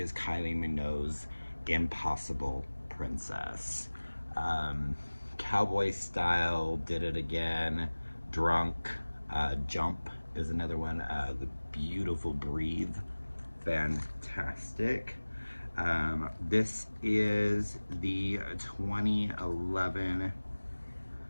Kylie Minogue's Impossible Princess. Cowboy Style, Did It Again, Drunk, Jump is another one. The Beautiful Breathe, fantastic. This is the 2011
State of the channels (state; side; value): inverted; both; correlation -1.00